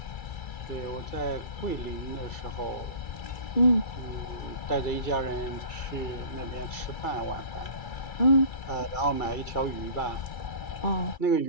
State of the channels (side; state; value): right; late; 2.3 ms